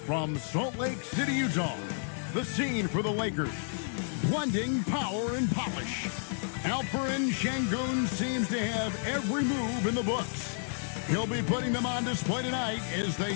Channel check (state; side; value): silent; right; digital silence